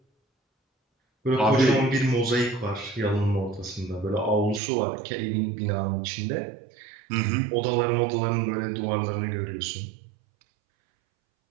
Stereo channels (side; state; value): left; drops out; at 4.6 s